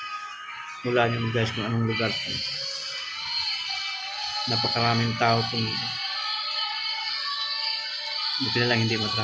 Wala nyo guys kung anong lugar to. Napakaraming tao itong buti na lang hindi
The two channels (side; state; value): both; identical; correlation 1.00